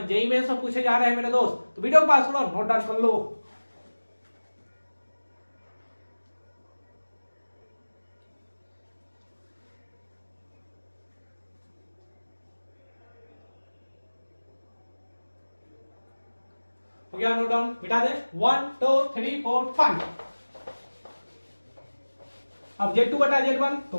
जेईई में सब पूछे जा रहे हैं मेरे दोस्त, तो वीडियो को पास करो, नोट डाउन कर लो। हो गया नोट डाउन, मिटा दे 1 2 3 4 5। अब Z2/Z1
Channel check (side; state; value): both; inverted; correlation -1.00